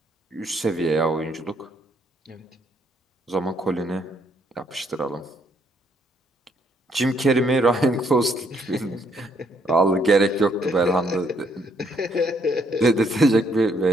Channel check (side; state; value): both; normal; correlation 0.70